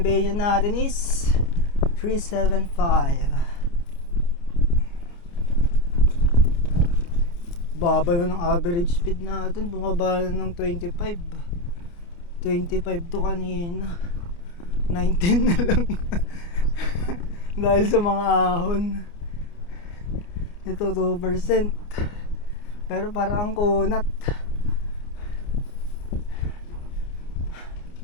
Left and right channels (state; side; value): late; right; 29 ms